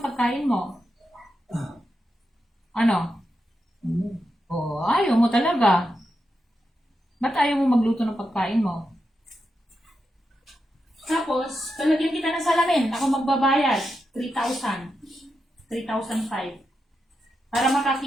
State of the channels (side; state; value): both; normal; correlation 0.87